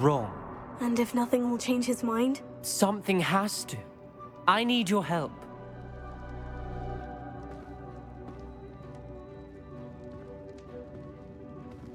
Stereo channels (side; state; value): both; identical; correlation 1.00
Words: And if nothing will change his mind? Something has to. I need your help.